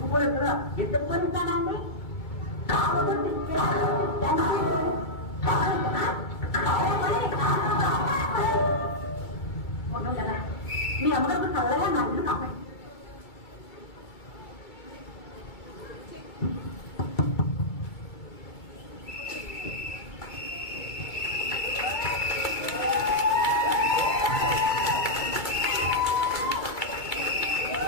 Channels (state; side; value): late; right; 2.3 ms